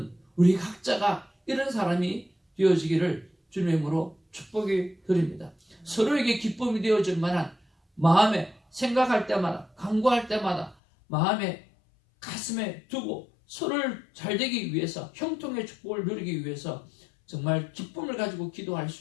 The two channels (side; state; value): right; drops out; at 10.8 s